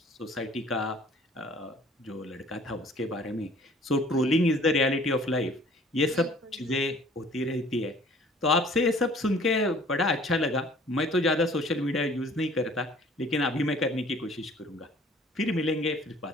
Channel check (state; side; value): normal; both; correlation 0.53